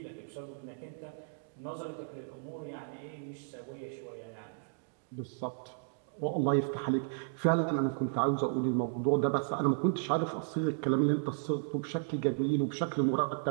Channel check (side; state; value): left; silent; digital silence